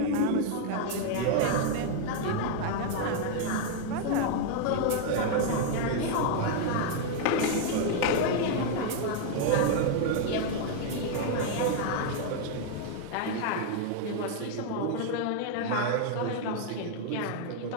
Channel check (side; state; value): both; different; correlation 0.00